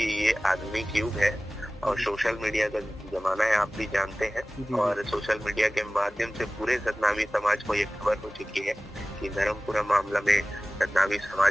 ये आधुनिक युग है और सोशल मीडिया का जमाना है, आप भी जानते हैं। और सोशल मीडिया के माध्यम से पूरे सतनामी समाज को ये खबर हो चुकी है कि धर्मपुरा मामला में सतनामी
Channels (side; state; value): both; normal; correlation 0.97